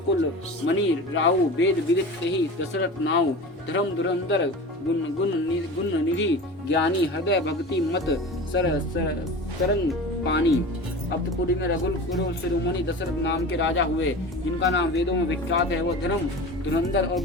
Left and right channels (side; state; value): both; normal; correlation 0.33